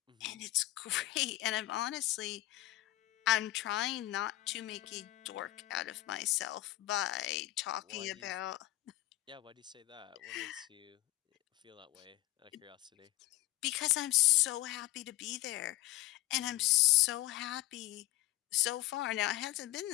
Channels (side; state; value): right; quieter; 17.0 dB